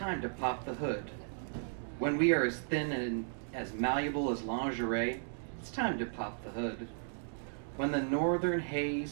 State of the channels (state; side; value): silent; left; digital silence